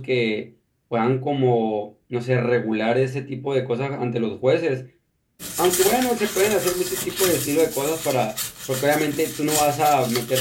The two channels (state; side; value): identical; both; correlation 1.00